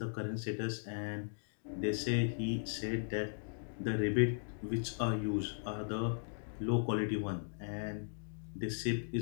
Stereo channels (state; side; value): silent; right; digital silence